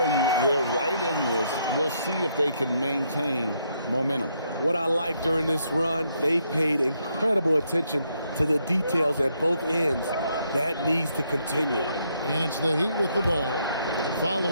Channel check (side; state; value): both; inverted; correlation -0.74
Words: you, they're right in this. We'll see if they can maintain momentum. What I like during this run, they paid incredible attention to the details at both ends. That needs to continue. And it's the Heat with the ball,